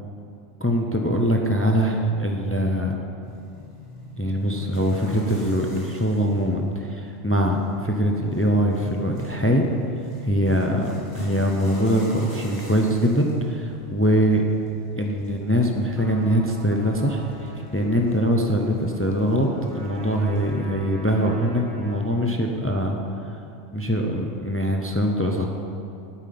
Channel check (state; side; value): normal; both; correlation 0.42